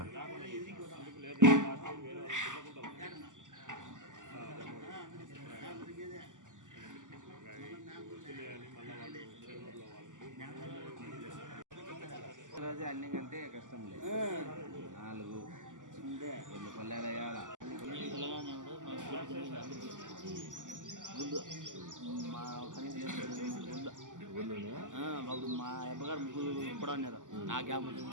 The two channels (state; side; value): late; left; 0.87 ms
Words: రోజు అన్ని కంటే కష్టం లేదు. 4 2 పల్లెలు వేయాల. మా మా అబ్బగారు ముగ్గురు కూడా ఉన్నారు. ఆ గ్యాప్